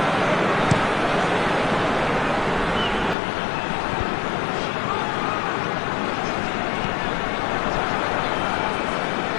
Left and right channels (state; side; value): drops out; right; at 3.2 s